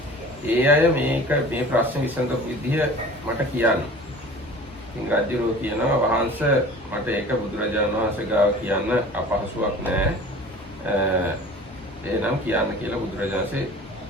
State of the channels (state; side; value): normal; both; correlation 0.43